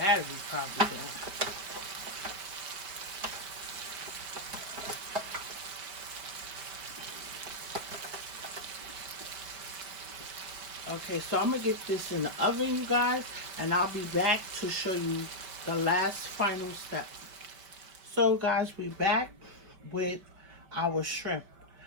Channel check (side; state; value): left; late; 5.1 ms